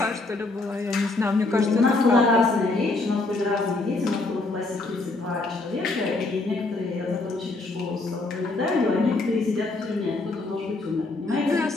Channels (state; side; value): quieter; right; 3.2 dB